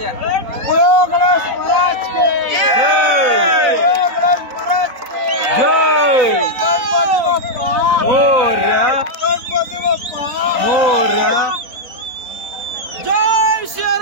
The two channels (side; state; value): left; late; 4.0 ms